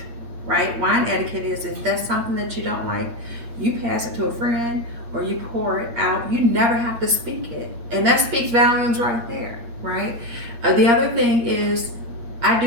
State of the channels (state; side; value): late; left; 8.5 ms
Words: right? Wine etiquette is if that's something that you don't like, you pass it to a friend or you pour it out, you never have to speak it. And that speaks volumes right there, right? The other thing is I